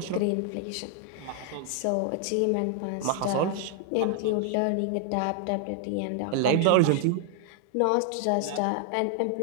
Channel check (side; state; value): both; different; correlation 0.00